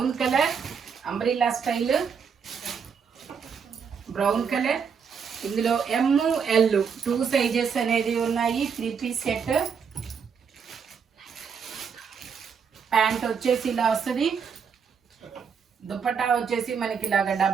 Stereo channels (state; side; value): quieter; left; 6.5 dB